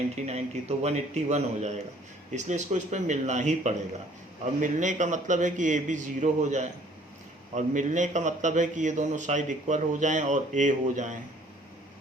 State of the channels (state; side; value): normal; both; correlation 0.57